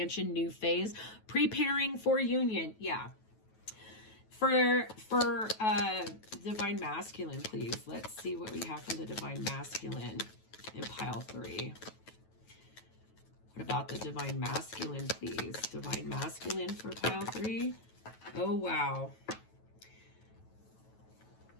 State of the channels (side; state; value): right; late; 9.2 ms